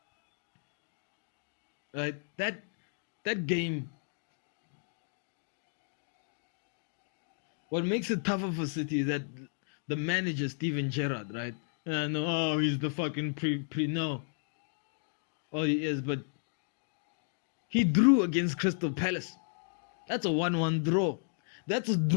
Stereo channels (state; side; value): silent; right; digital silence